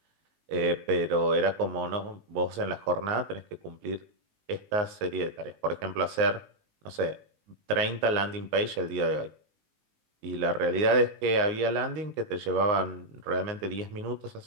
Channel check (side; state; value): left; late; 19 ms